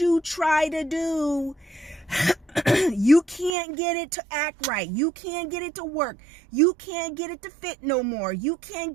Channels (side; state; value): left; drops out; at 3.5 s